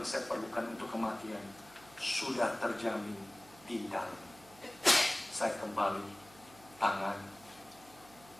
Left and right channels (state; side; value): noise; right; hum, 23 dB below the sound